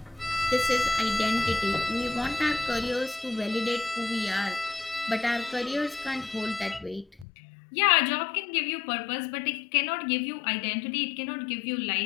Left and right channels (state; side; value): drops out; right; at 7.2 s